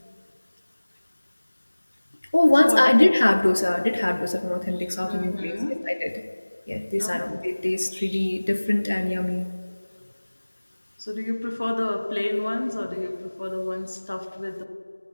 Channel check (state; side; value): inverted; both; correlation -1.00